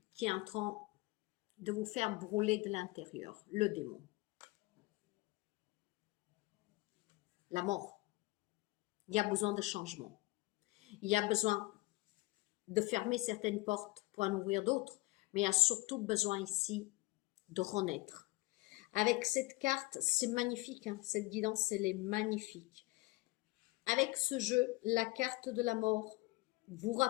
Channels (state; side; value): quieter; right; 22.0 dB